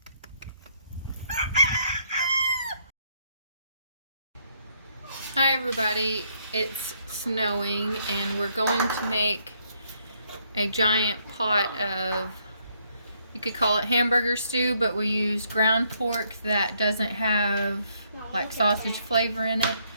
Hi everybody, it's snowing and we're going to make a giant pot of, you could call it hamburger stew, but we use ground pork that doesn't have like sausage flavor in it.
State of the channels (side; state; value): both; inverted; correlation -0.71